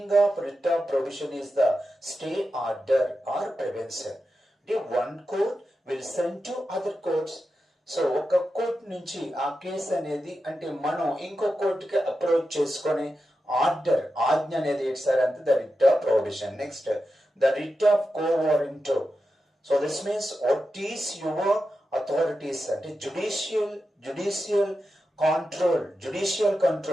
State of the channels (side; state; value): both; normal; correlation 0.90